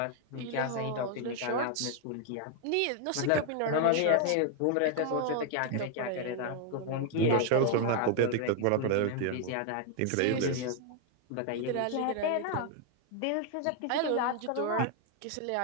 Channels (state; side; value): different; both; correlation 0.00